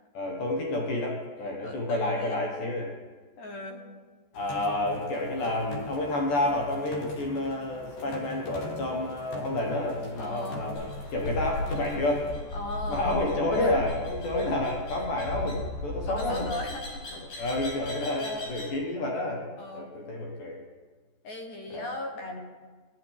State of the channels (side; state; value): right; late; 14 ms